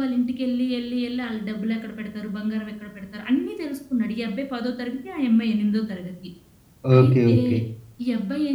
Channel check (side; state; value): both; identical; correlation 1.00